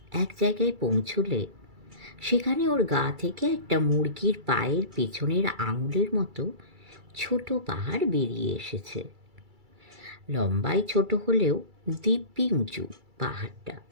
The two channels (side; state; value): left; late; 2.3 ms